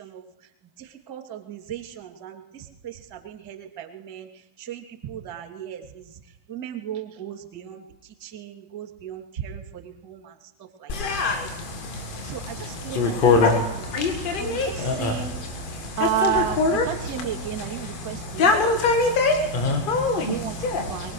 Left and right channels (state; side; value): late; right; 2.4 ms